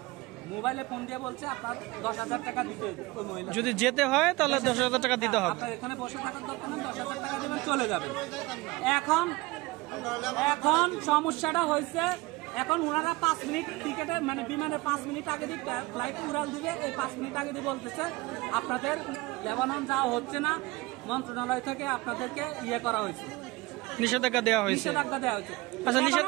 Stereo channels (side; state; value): left; quieter; 21.9 dB